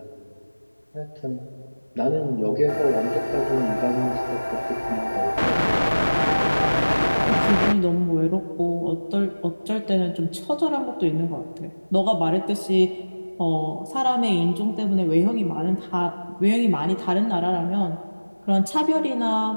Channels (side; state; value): both; inverted; correlation -1.00